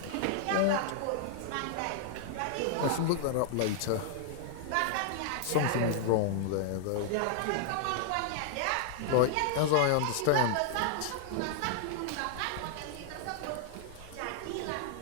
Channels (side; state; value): both; different; correlation -0.01